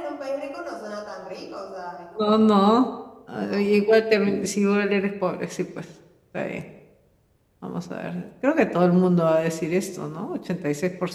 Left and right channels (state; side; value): identical; both; correlation 1.00